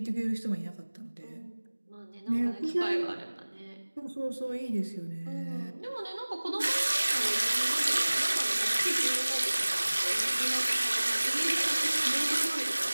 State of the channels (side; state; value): both; inverted; correlation -1.00